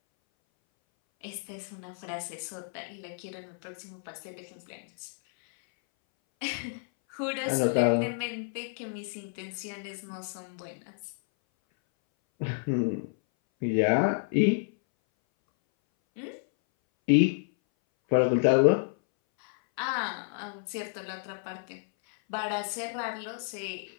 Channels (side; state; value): right; silent; 58 dB below the other